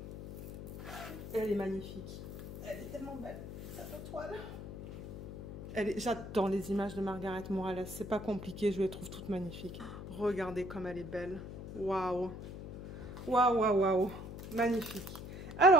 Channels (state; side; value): noise; left; hum, 10 dB below the sound